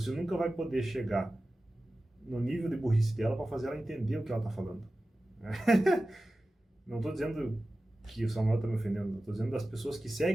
nunca vai poder chegar no nível de burrice dela para fazer ela entender o que ela está falando. Não estou dizendo que o Samuel está me ofendendo, estou dizendo das pessoas que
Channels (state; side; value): normal; both; correlation 0.95